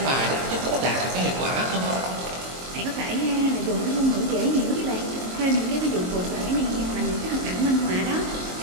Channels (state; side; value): late; left; 23 ms